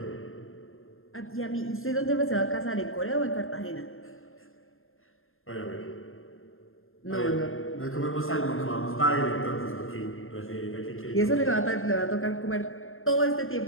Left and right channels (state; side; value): late; right; 0.60 ms